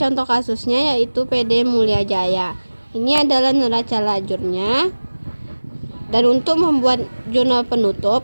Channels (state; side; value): inverted; both; correlation -1.00